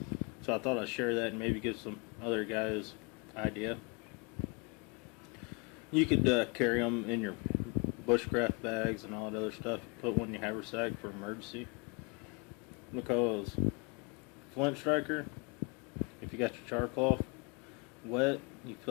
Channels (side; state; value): right; quieter; 32.4 dB